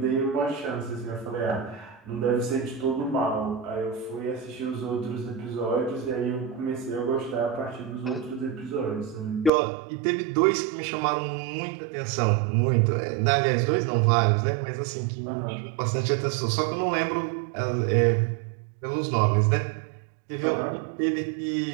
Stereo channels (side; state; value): left; drops out; at 9.5 s